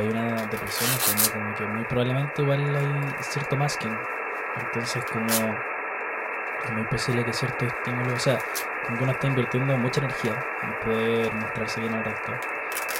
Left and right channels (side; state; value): both; identical; correlation 1.00